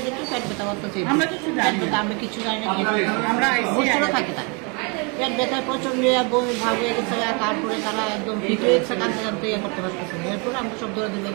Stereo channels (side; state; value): left; quieter; 32.6 dB